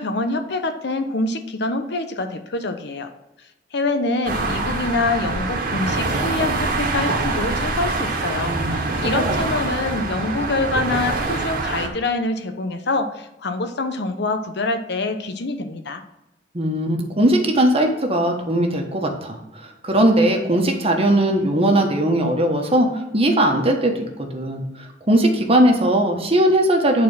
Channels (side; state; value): both; normal; correlation 0.36